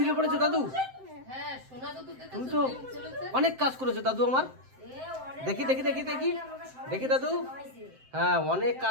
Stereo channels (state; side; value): late; left; 7.7 ms